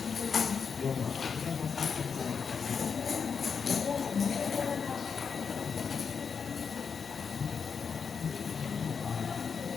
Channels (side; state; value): right; quieter; 6.0 dB